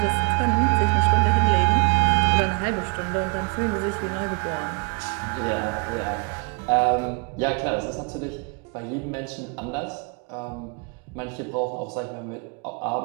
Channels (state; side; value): quieter; left; 33.9 dB